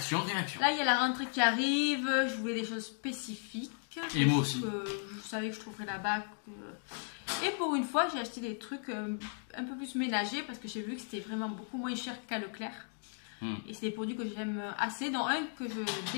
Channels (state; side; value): silent; right; 54 dB below the other